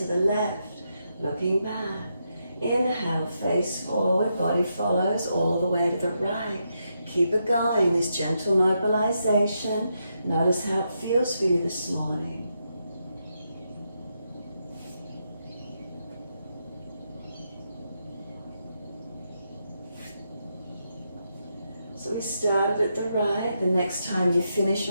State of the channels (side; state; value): both; inverted; correlation -0.82